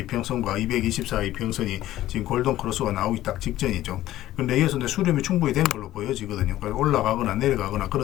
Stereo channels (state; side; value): quieter; right; 14.4 dB